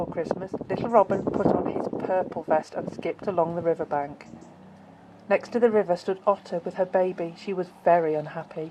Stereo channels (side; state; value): both; identical; correlation 1.00